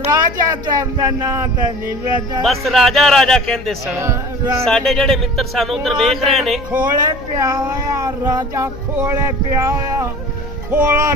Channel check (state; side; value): noise; left; hum, 17 dB below the sound